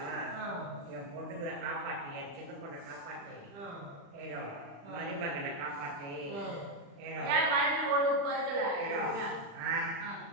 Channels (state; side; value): late; left; 35 ms